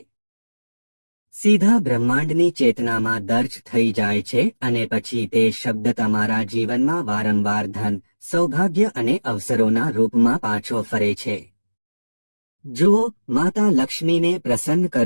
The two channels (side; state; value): both; inverted; correlation -1.00